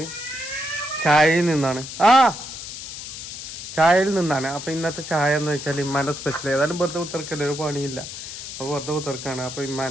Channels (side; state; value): left; noise; hiss, 9 dB below the sound